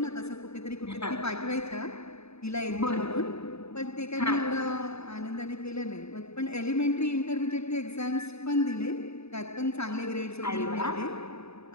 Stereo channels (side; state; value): right; late; 0.79 ms